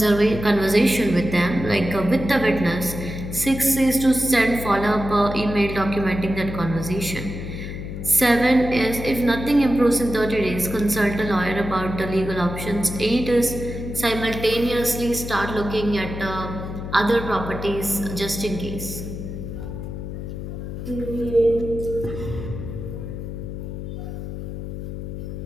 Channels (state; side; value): noise; left; hum, 7 dB below the sound